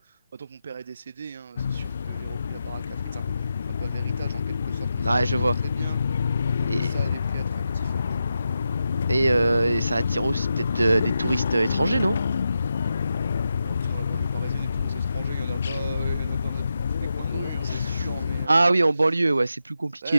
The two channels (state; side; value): inverted; both; correlation -0.88